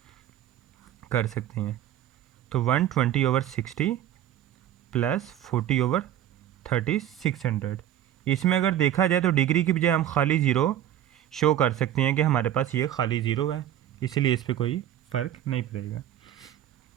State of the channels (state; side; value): quieter; left; 11.5 dB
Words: कर सकते हैं। तो 120/60 प्लस 40/3600। इसमें अगर देखा जाए तो डिग्री की बजाय हम खाली ज़ीरो शो कर सकते हैं कि हमारे पास ये खाली ज़ीरो है, इसलिए इस पर कोई फ़र्क नहीं पड़ेगा।